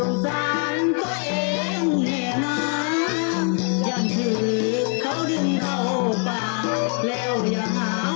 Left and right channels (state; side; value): quieter; right; 37.0 dB